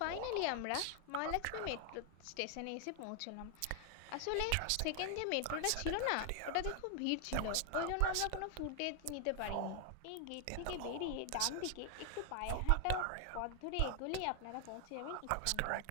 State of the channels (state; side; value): different; both; correlation 0.00